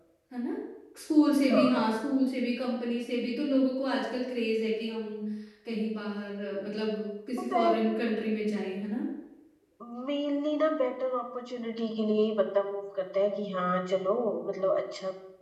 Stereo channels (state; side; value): identical; both; correlation 1.00